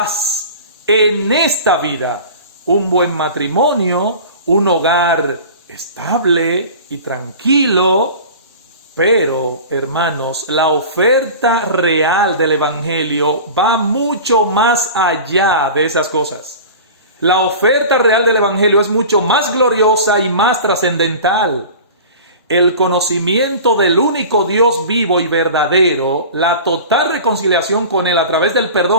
en esta vida, un buen matrimonio, un hogar estable y tranquilo. Pero, hermanos, la oferta real del evangelio va mucho más allá de esas cosas. La oferta real del evangelio es mucho más gloriosa y más trascendental. El conocimiento del único Dios vivo y verdadero, la total reconciliación con Él a través del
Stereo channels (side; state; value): both; inverted; correlation -0.37